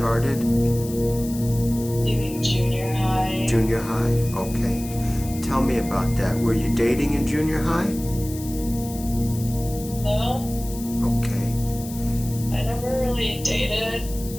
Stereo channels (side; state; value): left; noise; hiss, 14 dB below the sound